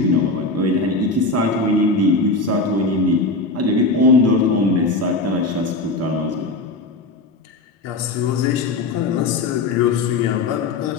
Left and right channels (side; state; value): right; quieter; 3.3 dB